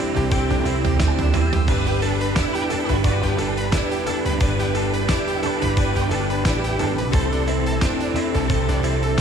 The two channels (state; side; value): normal; both; correlation 0.68